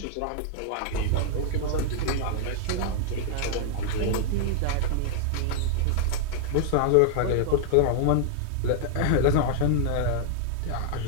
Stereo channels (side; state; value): both; different; correlation 0.00